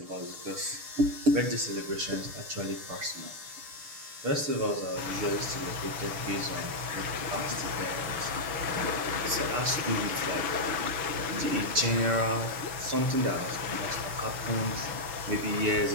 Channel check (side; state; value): left; late; 6.7 ms